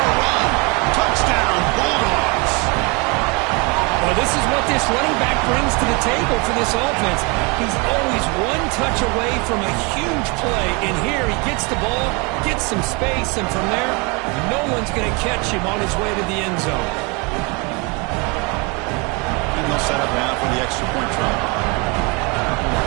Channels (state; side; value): quieter; left; 29.7 dB